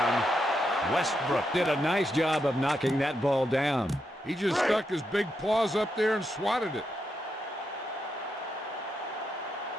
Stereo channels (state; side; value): normal; both; correlation 0.83